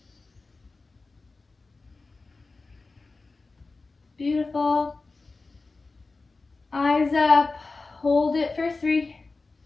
Beautiful. Eyes up. Hold it for 3,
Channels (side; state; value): right; quieter; 3.7 dB